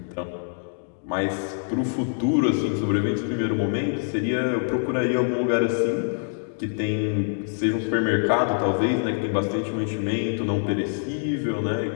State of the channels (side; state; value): right; silent; digital silence